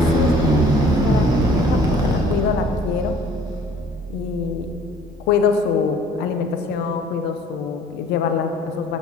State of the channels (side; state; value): both; normal; correlation 0.53